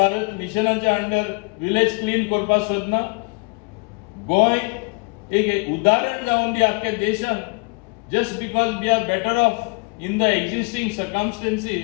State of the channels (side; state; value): right; quieter; 30.6 dB